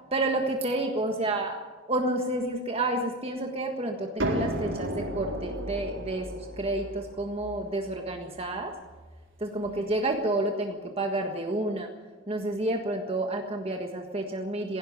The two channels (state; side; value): normal; both; correlation 0.29